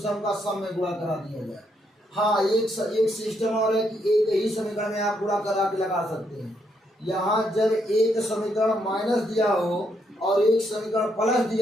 का सम में गुणा करा दिया जाए। हाँ, एक सिस्टम और है कि एक ही समीकरण में आप गुणा करा के लगा सकते हैं। यहाँ जब एक समीकरण माइनस दिया हो और एक समीकरण प्लस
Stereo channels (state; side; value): normal; both; correlation 0.76